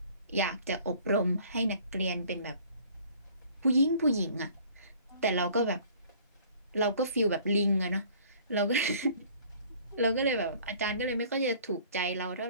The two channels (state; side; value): inverted; both; correlation -0.52